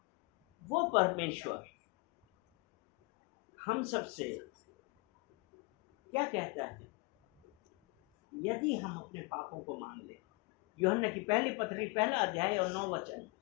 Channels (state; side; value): quieter; right; 26.6 dB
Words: वो परमेश्वर हम सबसे क्या कहता है? यदि हम अपने पापों को मान ले, यूहन्ना की पहली पत्री 1 अध्याय और 9 वचन,